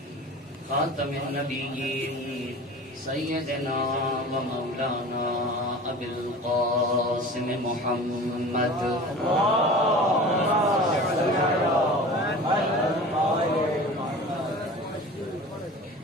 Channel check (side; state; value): both; normal; correlation 0.38